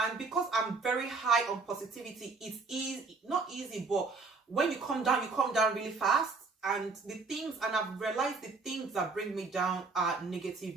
because I'm very high on positivity, it's easy, not easy, but when you come down really fast. And I've realized the things that bring me down are negative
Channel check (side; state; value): left; quieter; 4.2 dB